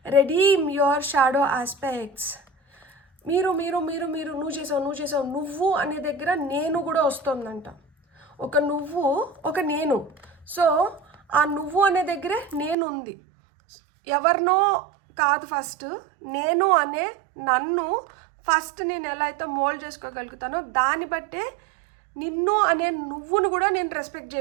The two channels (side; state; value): left; drops out; at 12.8 s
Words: redeem your shadow aspects. మీరు నువ్వు చేసావు నువ్వు అనే దగ్గర నేను కూడా వస్తుందంట. ఒక నువ్వు, ఒక నేను. సో ఆ నువ్వు అనే దగ్గరే నేను ఉంది. ఎవరినో కాదు, ఫస్ట్ నేను అనే నన్ను ఫస్ట్ నేను ఎలా అయితే మోల్డ్ చేసుకోగలుగుతానో దాన్ని బట్టే నిన్ను అనే నువ్వును కూడా నేను రెస్పెక్ట్